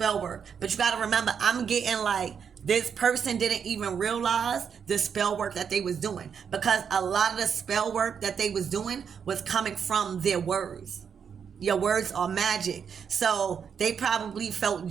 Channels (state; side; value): quieter; left; 7.1 dB